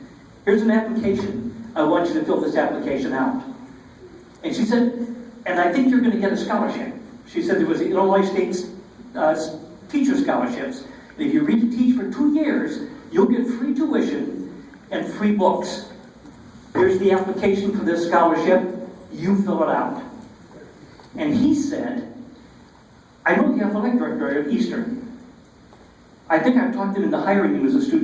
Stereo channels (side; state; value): both; identical; correlation 1.00